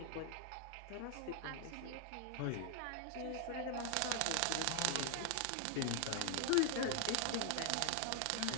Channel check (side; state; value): both; different; correlation 0.00